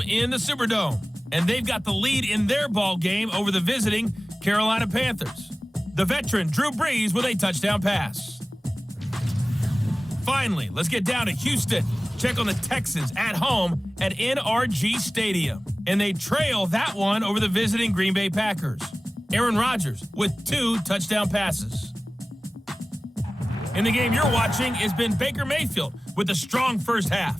in the Superdome. And they've got the lead in their ball game over the visiting Carolina Panthers. The veteran Drew Brees with a touchdown pass. Finally, let's get down to Houston. Check on the Texans at home at NRG Stadium. And they trail that one over the visiting Green Bay Packers. Aaron Rodgers with 2 touchdown passes. In the game you're watching has been Baker Mayfield with a strong first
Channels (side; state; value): both; normal; correlation 0.98